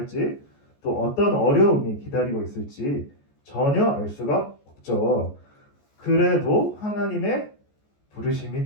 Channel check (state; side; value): late; right; 14 ms